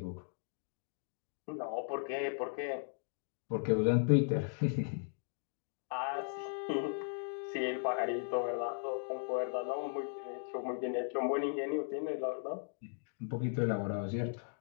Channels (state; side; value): silent; right; digital silence